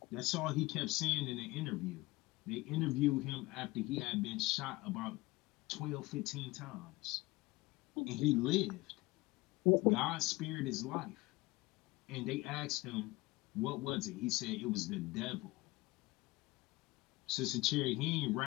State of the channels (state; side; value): quieter; right; 21.2 dB